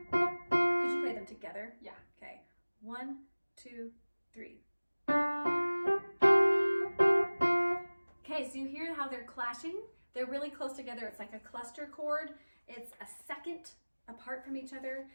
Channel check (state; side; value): inverted; both; correlation -1.00